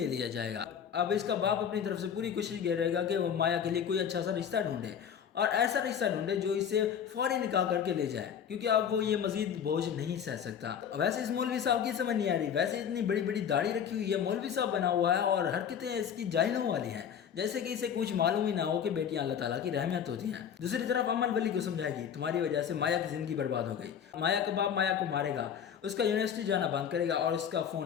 لیا جائے گا۔ اب اس کا باپ اپنی طرف سے پوری کوشش کر رہے گا کہ وہ مایا کے لیے کوئی اچھا سا رشتہ ڈھونڈے اور ایسا رشتہ ڈھونڈے جو اسے فوری نکاح کر کے لے جائے، کیونکہ اب وہ یہ مزید بوجھ نہیں سہ سکتا۔ ویسے اس مولوی صاحب کی سمجھ نہیں آ رہی، ویسے اتنی بڑی بڑی داڑھی رکھی ہوئی ہے، مولوی صاحب بنا ہوا ہے اور حرکتیں اس کی جاہلوں والی ہیں، جیسے کہ اسے کچھ معلوم ہی نہ ہو کہ بیٹیاں اللہ تعالیٰ کی رحمت ہوتی ہیں۔ دوسری طرف امل ولی کو سمجھائے گی تمہاری وجہ سے مایا کی زندگی برباد ہو گئی، مایا کا باپ مایا کو مارے گا، اس کا یونیورسٹی جانا بند کرے گا اور اس کا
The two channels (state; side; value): quieter; right; 8.2 dB